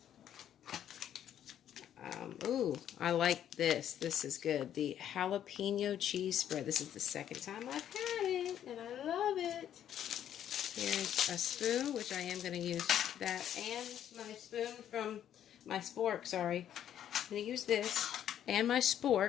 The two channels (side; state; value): right; quieter; 10.4 dB